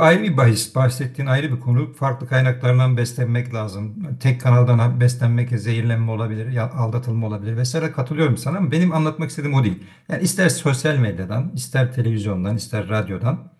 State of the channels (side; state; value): both; identical; correlation 1.00